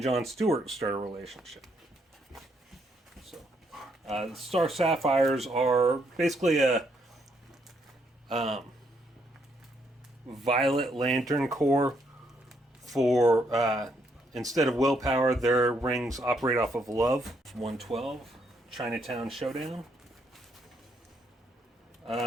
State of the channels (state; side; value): normal; both; correlation 0.74